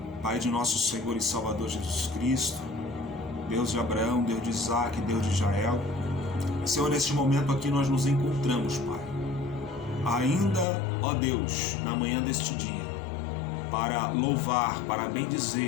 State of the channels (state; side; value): drops out; right; at 10.7 s